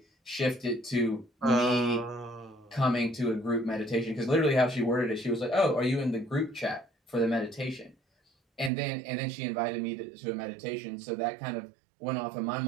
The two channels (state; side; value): drops out; left; at 8.7 s